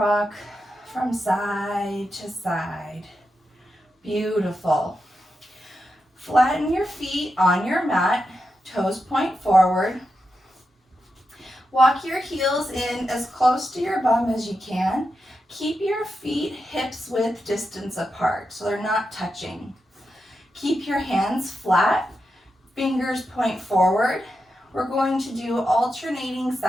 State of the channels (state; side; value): normal; both; correlation 0.88